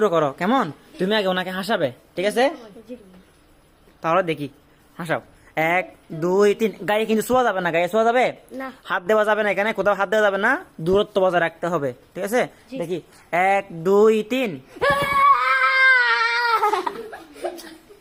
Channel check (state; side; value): identical; both; correlation 1.00